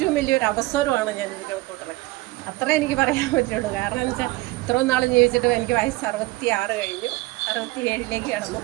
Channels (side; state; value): left; quieter; 20.6 dB